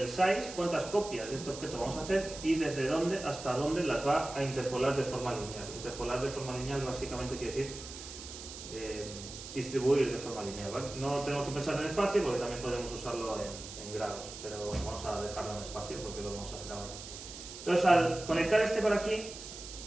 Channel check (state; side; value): noise; right; hiss, 12 dB below the sound